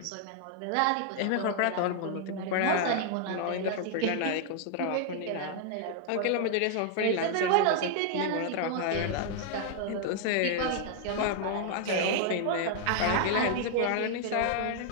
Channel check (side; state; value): both; different; correlation 0.00